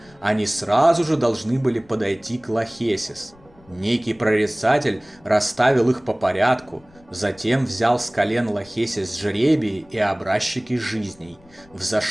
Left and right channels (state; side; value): noise; left; rumble, 27 dB below the sound